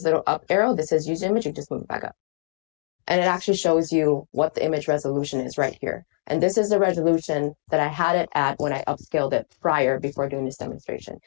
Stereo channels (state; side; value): silent; right; digital silence